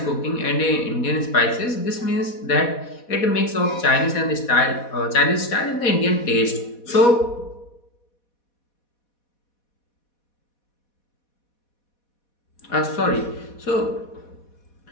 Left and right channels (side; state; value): right; late; 4.1 ms